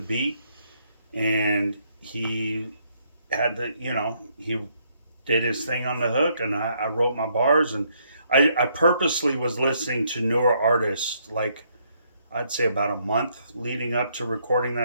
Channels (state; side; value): inverted; both; correlation -0.71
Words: and he had he did his thing on the hook, and I wrote my bars, and I purposely was listening to newer artists, like I'd say about a month leading up to recording